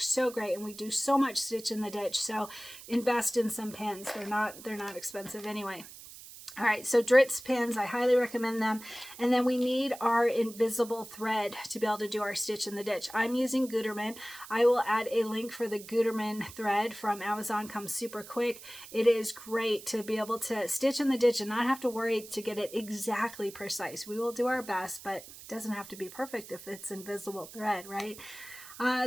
so great, and we do so much stitch in the ditch, so invest in some pins. They're not expensive anyway. All right, so Dritz pins, I highly recommend them. And then we need our invisible thread to be able to do our stitch in the ditch. I'm using Gutermann. I will add a link for the Gutermann thread from Amazon. Comes super quick. It is great to be able to stitch in the ditch and not have to worry to get it exactly precise. We will do our best, but it doesn't have to be perfect if it's invisible thread, right?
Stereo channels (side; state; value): right; noise; hiss, 16 dB below the sound